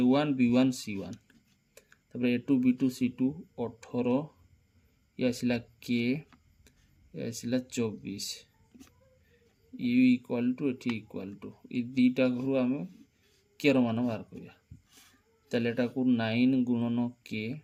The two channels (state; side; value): identical; both; correlation 1.00